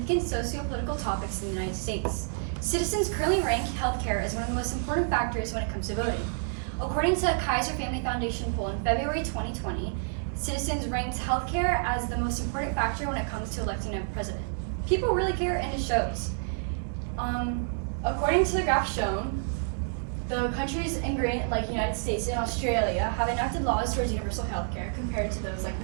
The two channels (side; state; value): left; silent; digital silence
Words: socio-political topics in the United States. Citizens currently rank healthcare as one of the most important factors when it comes to voting. According to a Kaiser Family Foundation poll in February 2020, citizens ranked healthcare as the most important factor when it comes to electing a president. People really care, and it shows. According to the graph shown, the countries in great, like United States and Australia, have enacted laws towards universal healthcare compared to those like